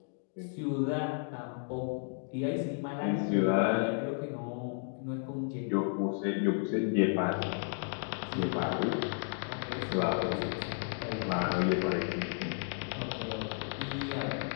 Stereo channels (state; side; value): silent; right; 56 dB below the other